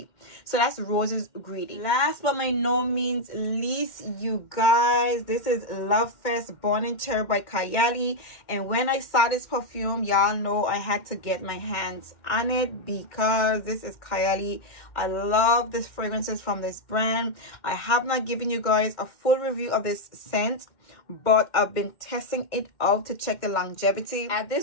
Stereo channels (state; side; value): late; right; 2.1 ms